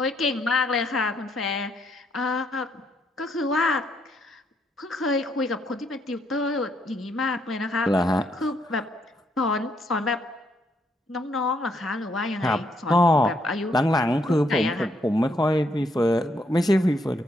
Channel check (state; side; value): normal; both; correlation 0.74